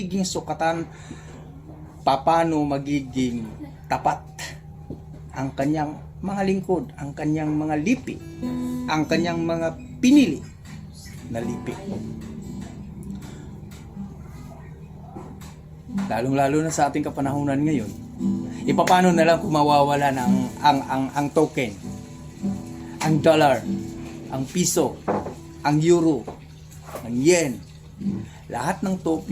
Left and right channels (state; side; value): identical; both; correlation 1.00